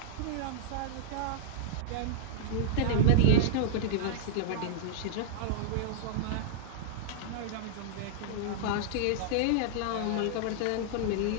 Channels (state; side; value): different; both; correlation -0.02